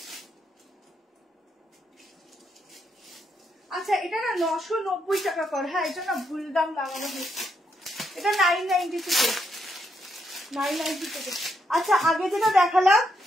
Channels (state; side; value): normal; both; correlation 0.78